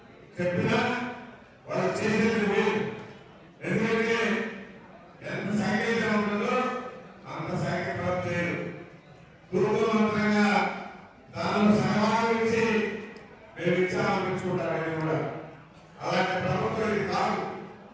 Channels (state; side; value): identical; both; correlation 1.00